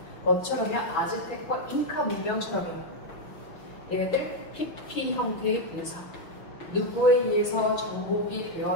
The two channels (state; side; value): late; right; 6.0 ms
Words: 뭐처럼요? 아즈텍과 잉카 문명처럼요. 얘네들 PP 형태의 분사. 누구에 의해서 정복이